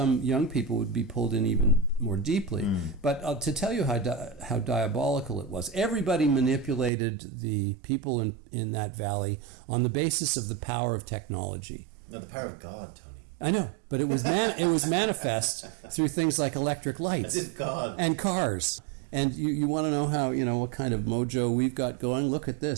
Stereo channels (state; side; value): drops out; left; at 6.9 s